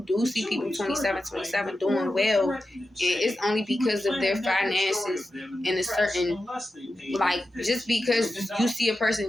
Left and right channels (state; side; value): normal; both; correlation 0.91